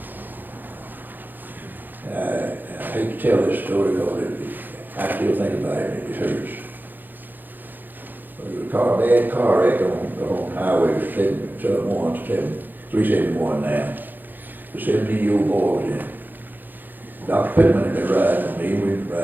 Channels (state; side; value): late; left; 0.088 ms